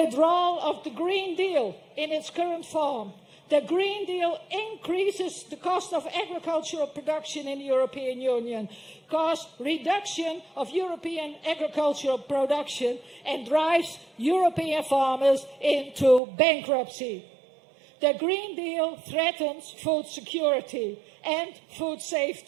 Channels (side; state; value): left; drops out; at 16.2 s